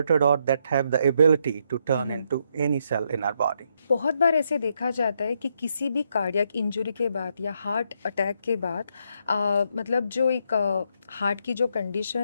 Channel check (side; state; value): both; inverted; correlation -0.76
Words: or that have the ability to turn into any cell in our body. बहुत बार ऐसे देखा जाता है कि किसी भी cardiac injury के बाद या हार्ट अटैक के बाद मतलब जो एक हार्ट की जो